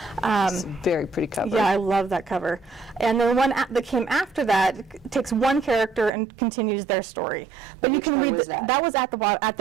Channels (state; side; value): drops out; left; at 6.1 s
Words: It's a very pretty cover. Yeah, I love that cover. And the one that came after that takes one character and continues their story. But which you can one read was that? That was at